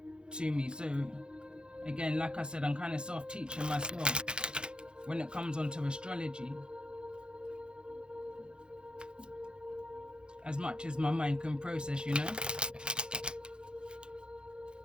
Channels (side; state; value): left; late; 0.049 ms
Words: to me, so again, like I said, I'm kind of self-teaching myself when it comes onto astrology, as much as my mind can process, you know.